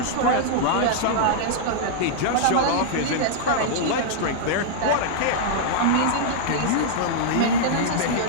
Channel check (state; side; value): different; both; correlation -0.01